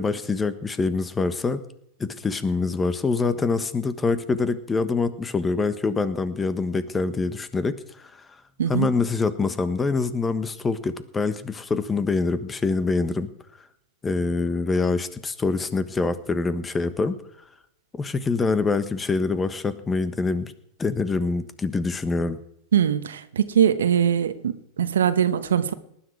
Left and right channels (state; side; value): normal; both; correlation 0.42